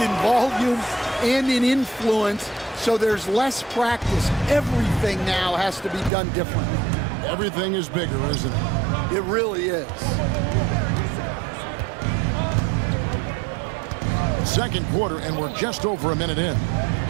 volume and in influence, so there's less practice. Everything now has to be done differently. Everything is bigger, isn't it? It really is. Second quarter, and we're just over a minute in.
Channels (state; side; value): drops out; left; at 6.1 s